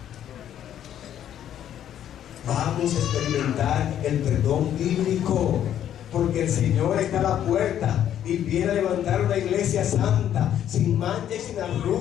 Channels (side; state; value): right; quieter; 10.5 dB